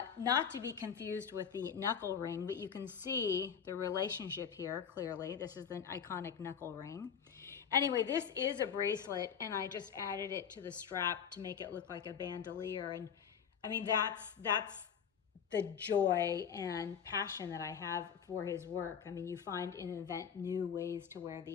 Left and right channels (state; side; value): quieter; right; 7.5 dB